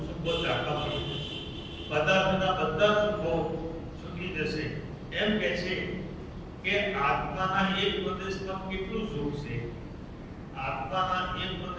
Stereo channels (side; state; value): both; identical; correlation 1.00